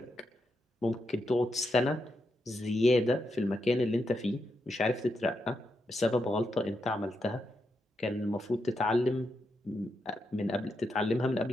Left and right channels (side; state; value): both; normal; correlation 0.84